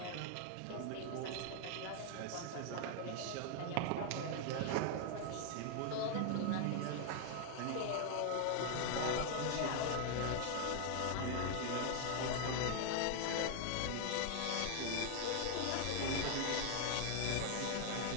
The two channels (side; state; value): both; different; correlation 0.00